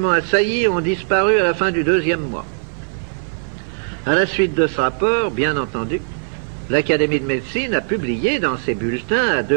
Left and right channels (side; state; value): left; silent; 57 dB below the other